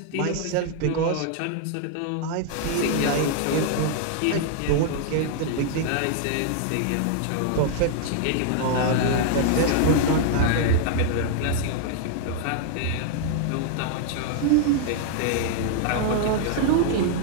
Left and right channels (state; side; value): different; both; correlation 0.00